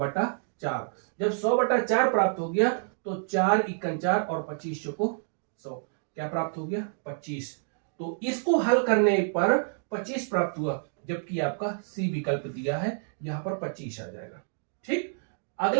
जब 100/4 प्राप्त हो गया तो 4 × 4 और 25 चौको 100, क्या प्राप्त हो गया? 25। तो इसको हल करने पर 25 प्राप्त हुआ, जबकि आपका सी विकल्प दिया है, यहां पर 25 आ जाएगा। ठीक,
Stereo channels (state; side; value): silent; left; digital silence